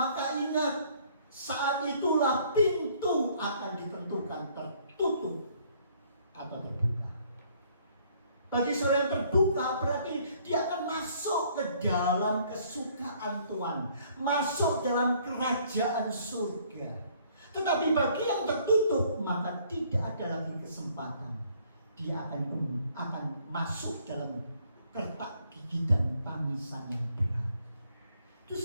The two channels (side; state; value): both; inverted; correlation -0.62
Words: ingat, saat itulah pintu akan ditentukan tertutup atau terbuka. Bagi seorang yang terbuka berarti dia akan masuk ke dalam kesukaan Tuhan, masuk dalam kerajaan surga. Tetapi bagi yang tertutup, maka tidak ada lagi kesempatan. Dia akan masuk dalam kertak gigi dan tangisan yang berat. Itu